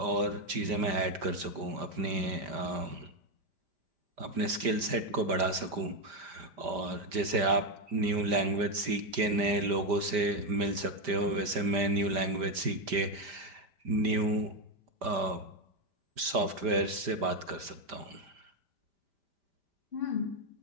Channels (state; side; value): late; left; 5.1 ms